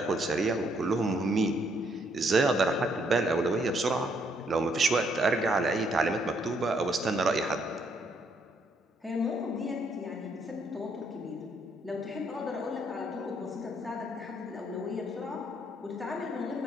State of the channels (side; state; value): both; normal; correlation 0.70